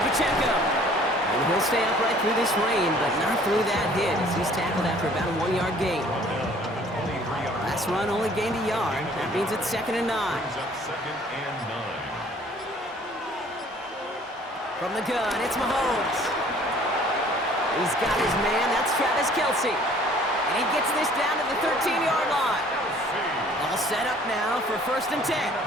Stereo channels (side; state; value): both; normal; correlation 0.55